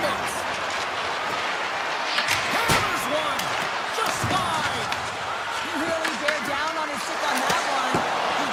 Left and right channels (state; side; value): identical; both; correlation 1.00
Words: Hammers one. Just wide. He really bear down on his stick on that one. He